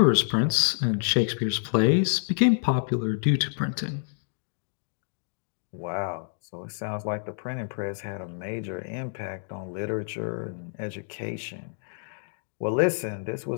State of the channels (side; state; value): right; silent; digital silence